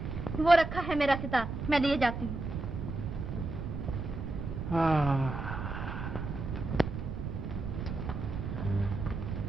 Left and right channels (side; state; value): right; noise; rumble, 5 dB below the sound